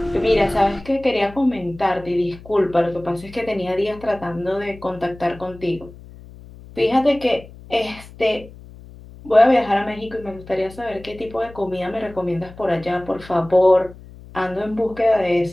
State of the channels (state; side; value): noise; left; hum, 19 dB below the sound